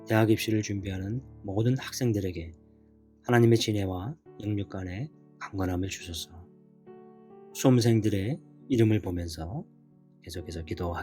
대학 입시를 준비하는 모든 학생들에게 하나님의 지혜와 영육간의 강건함을 주소서. 수험생들의 이름을 보면서 계속해서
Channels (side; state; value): both; identical; correlation 1.00